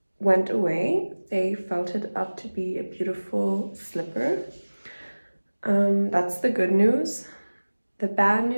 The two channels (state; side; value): inverted; both; correlation -1.00